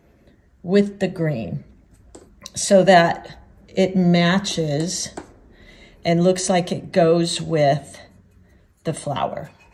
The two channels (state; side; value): identical; both; correlation 1.00